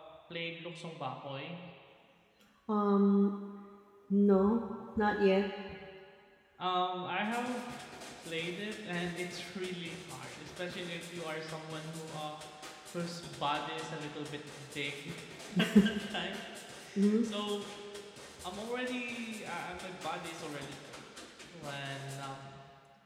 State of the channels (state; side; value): identical; both; correlation 1.00